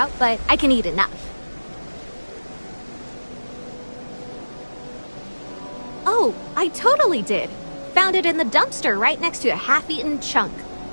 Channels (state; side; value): inverted; both; correlation -1.00